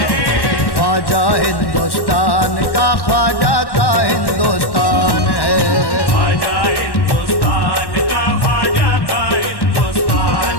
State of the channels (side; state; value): right; late; 1.1 ms